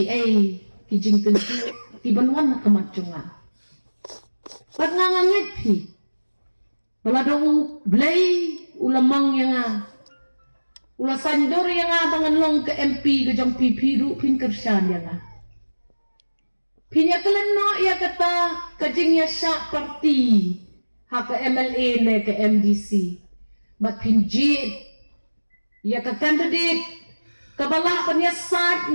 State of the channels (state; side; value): inverted; both; correlation -1.00